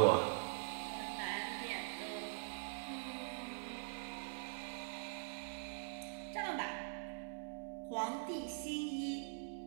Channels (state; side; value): silent; left; digital silence